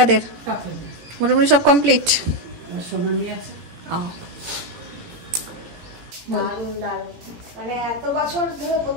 মোটামুটি সব কমপ্লিট। সোনা নিয়ে আছে। দারুণ দারুণ, মানে এত বছর ধরে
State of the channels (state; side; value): late; left; 18 ms